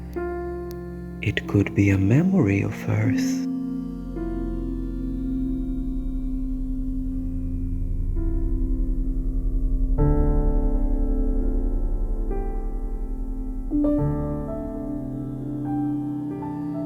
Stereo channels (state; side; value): identical; both; correlation 1.00